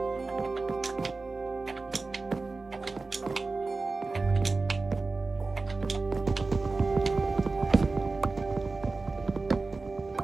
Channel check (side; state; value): left; quieter; 3.7 dB